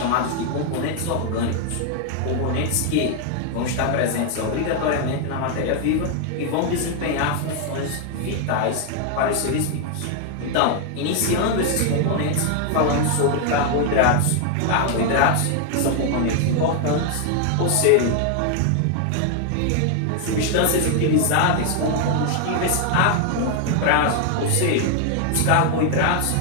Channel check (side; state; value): both; different; correlation 0.00